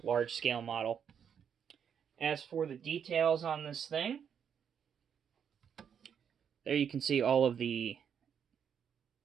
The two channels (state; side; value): quieter; left; 7.8 dB